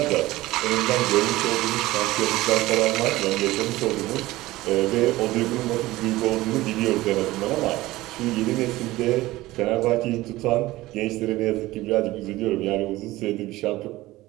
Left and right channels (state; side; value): quieter; left; 18.0 dB